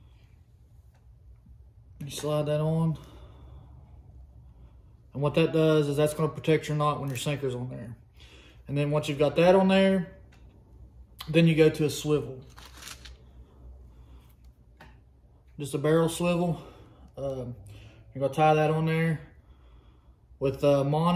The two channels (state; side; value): identical; both; correlation 1.00